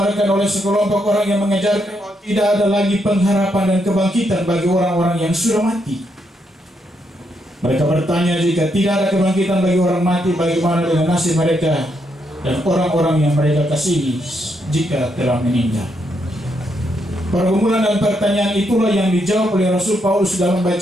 oleh sekelompok orang yang mengajarkan bahwa tidak ada lagi pengharapan dan kebangkitan bagi orang-orang yang sudah mati. Mereka bertanya, jika tidak ada kebangkitan bagi orang mati, bagaimana dengan nasib mereka dan orang-orang yang mereka kasihi jika telah meninggal? Pergumulan dan pertanyaan itulah yang dijawab oleh Rasul Paulus dalam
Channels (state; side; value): normal; both; correlation 0.78